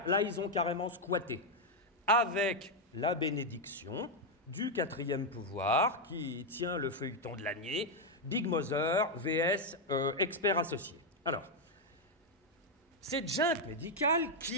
Là, ils ont carrément squatté, avec la bénédiction du quatrième pouvoir qui tient le feuilleton de l'année, Big Mother vs expert associé. Alors, cette junte médicale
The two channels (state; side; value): normal; both; correlation 0.02